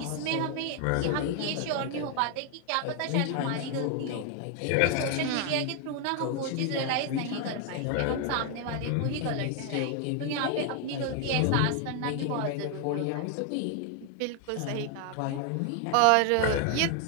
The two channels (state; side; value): different; both; correlation 0.00